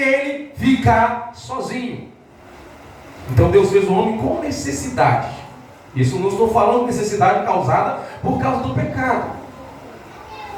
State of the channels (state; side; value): identical; both; correlation 1.00